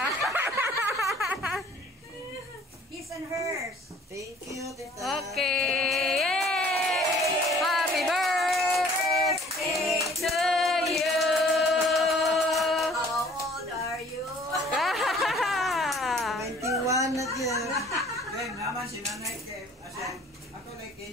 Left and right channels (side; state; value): both; normal; correlation 0.53